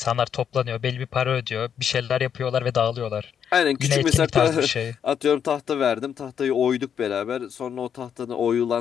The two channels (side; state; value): right; quieter; 8.1 dB